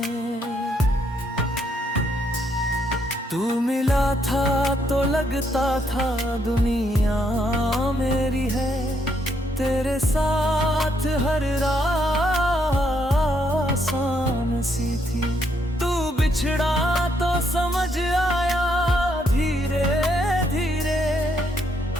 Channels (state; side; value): normal; both; correlation 0.74